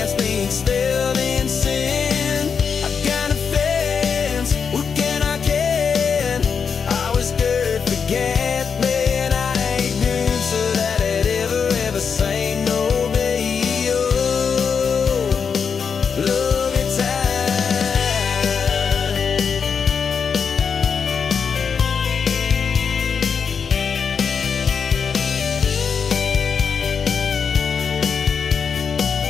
being still in sin. I got a fence, what can I can? I was good, forget me, and I ain't good so that I'd ever say no, baby. Oh, love it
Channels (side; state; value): right; quieter; 6.2 dB